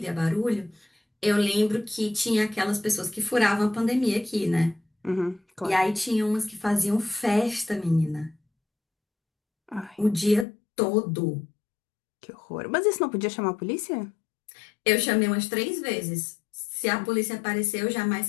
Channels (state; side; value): drops out; right; at 10.5 s